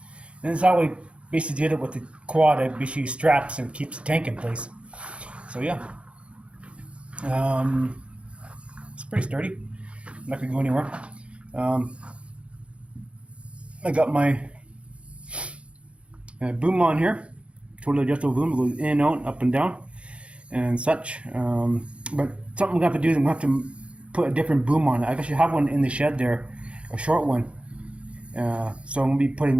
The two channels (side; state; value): left; late; 0.060 ms